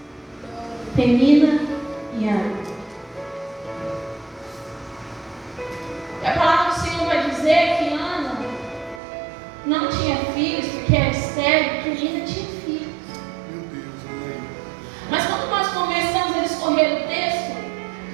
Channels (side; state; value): left; drops out; at 9.0 s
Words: Penina e Ana. E a palavra do Senhor vai dizer que Ana não tinha filhos porque era estéril, porque Penina tinha filhos.